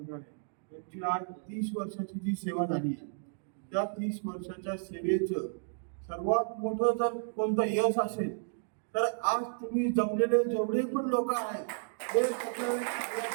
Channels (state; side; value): silent; left; digital silence